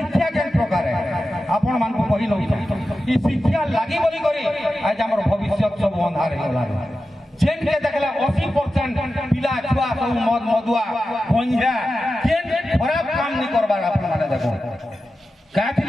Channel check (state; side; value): normal; both; correlation 0.92